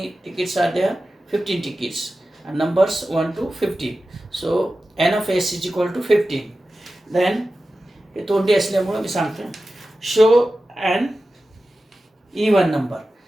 tickets are there, 15 tickets, numbers 1 to 15. So N of S is equal to 15. Then हे तोंडी असल्यामुळं मी सांगतो, शो अँड इवन नंबर.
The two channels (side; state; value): both; normal; correlation 0.94